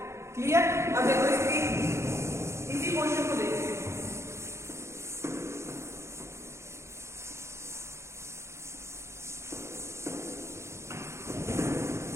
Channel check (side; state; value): left; late; 0.13 ms